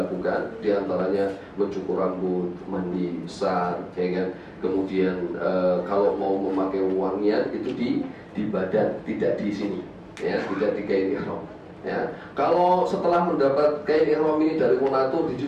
diantaranya mencukur rambut, mandi besar, ya kan. Kemudian kalau mau memakai wangian itu di badan, tidak di sini, ya, tidak di kain ihram. Ya, kalau setelah mendapat kain ihram ini dari Monatur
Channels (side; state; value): both; identical; correlation 1.00